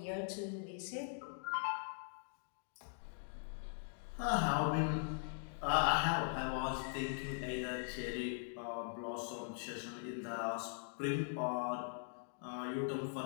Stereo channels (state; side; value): silent; right; digital silence